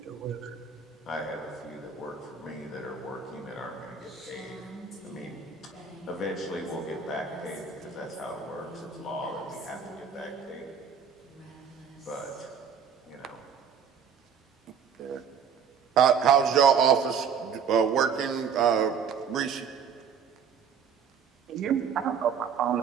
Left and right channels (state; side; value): quieter; left; 6.8 dB